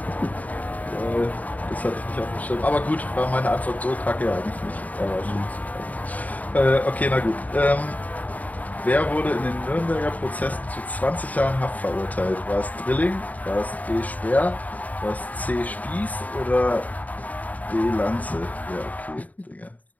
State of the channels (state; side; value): late; right; 0.074 ms